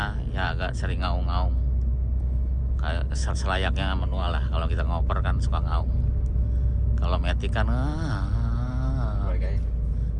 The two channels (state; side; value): identical; both; correlation 1.00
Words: ya agak sering ngaung-ngaung, kayak selayaknya manual lah. Kalau kita ngoper kan suka ngaung. Kalau matic kan